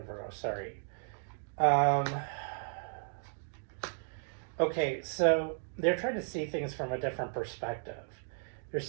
Virgo, sorry. Okay, so they're trying to see things from a different perspective. They're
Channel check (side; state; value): left; silent; digital silence